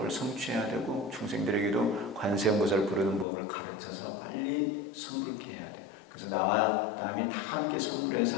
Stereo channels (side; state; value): right; drops out; at 3.2 s